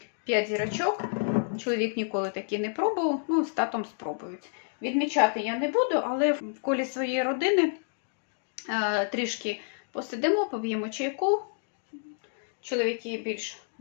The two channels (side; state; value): right; silent; digital silence